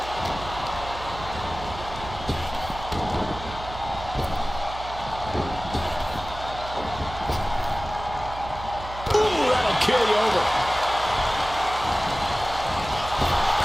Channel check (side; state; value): right; noise; hum, 12 dB below the sound